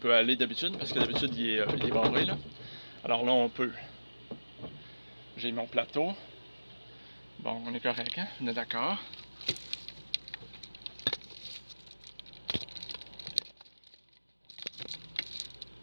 aller d'habitude, parce que d'habitude, il est barré, là. Alors là, on peut. J'ai mon plateau. Bon, on est correct, hein? On est d'accord.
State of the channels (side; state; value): both; inverted; correlation -1.00